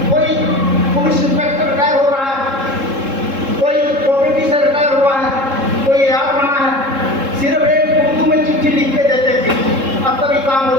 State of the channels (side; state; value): left; late; 3.7 ms